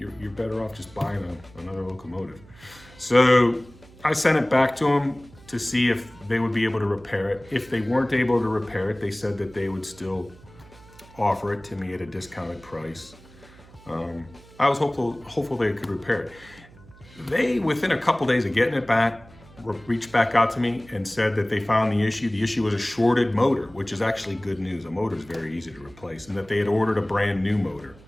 better off just buying another locomotive. So I sent it back to them to see if they would be able to repair it. If they weren't able to repair it, they said that they would still offer it to me at a discounted price. I was hopeful they could repair it. they, within a couple days of getting it back, reached back out to me and said that they found the issue. The issue was a shorted motor, which is actually good news. A motor is very easy to replace, and that they had ordered a brand new motor.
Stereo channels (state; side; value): noise; right; hum, 23 dB below the sound